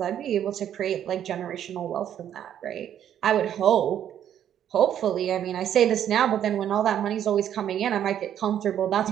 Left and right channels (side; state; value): left; quieter; 10.1 dB